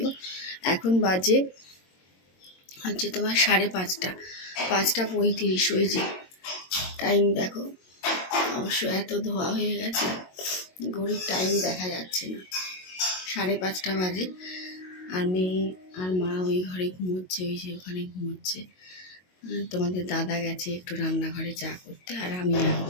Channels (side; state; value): right; late; 22 ms